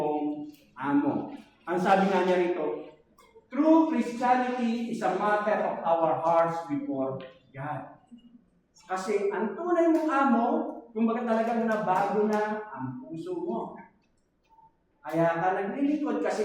amo. Ang sabi nga niya rito, true Christianity is a matter of our hearts before God. Kasi ang tunay mong amo, kumbaga talagang nabago na ang puso mo. Kaya ka naglilingkod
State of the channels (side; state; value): both; identical; correlation 1.00